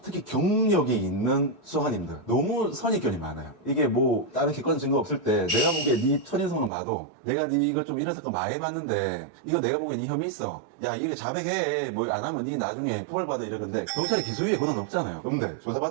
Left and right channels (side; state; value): left; drops out; at 6.7 s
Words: 특히 경력이 있는 수사관님들 너무 선입견이 많아요. 이게 뭐 다른 객관 증거 없을 때 내가 보기에 네 첫인상만 봐도 내가 네 이걸 좀 이런 사건 많이 해봤는데 이거 내가 보기엔 이 혐의 있어. 야, 이렇게 자백해. 뭐 안 하면 니 나중에 처벌받아 이러는데 경찰이 기소유예 권한 없잖아요. 근데